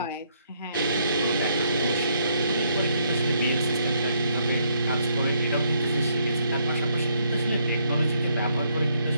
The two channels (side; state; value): both; inverted; correlation -0.71